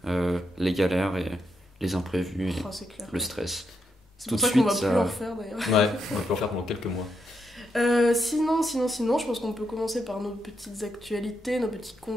les galères et les imprévus et Oh, c'est clair. le stress. C'est tout pour de ça qu'on va suite, plus ça- en faire d'ailleurs. Ouais, on peut en faire pendant quelques mois. Sinon, je pense qu'on peut commencer par nos petites actualités, nos petits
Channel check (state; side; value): normal; both; correlation 0.81